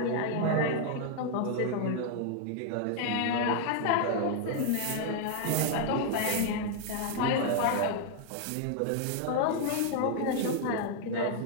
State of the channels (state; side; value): different; both; correlation 0.00